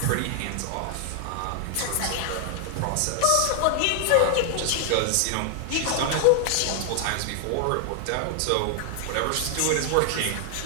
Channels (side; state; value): both; different; correlation 0.00